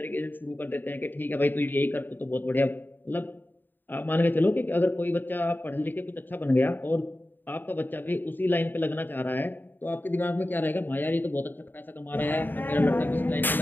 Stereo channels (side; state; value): right; late; 0.092 ms